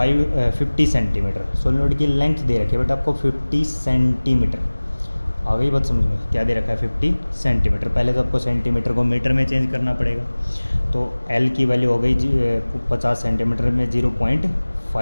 centimetre. Solenoid की लेंथ दे रखी है बेटा आपको 50 सेंटीमीटर। आ गई बात समझ में, क्या दे रखा है 50 सेंटीमीटर। पहले तो आपको सेंटीमीटर को मीटर में चेंज करना पड़ेगा। तो एल की वैल्यू हो गई 50 सेंटीमीटर में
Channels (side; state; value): both; inverted; correlation -1.00